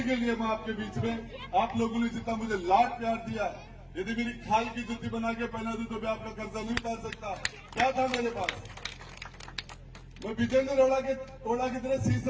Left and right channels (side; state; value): both; identical; correlation 1.00